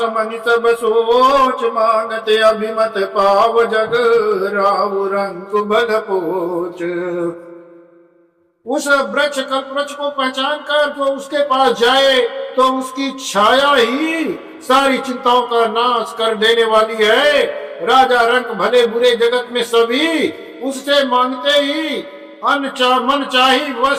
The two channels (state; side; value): identical; both; correlation 1.00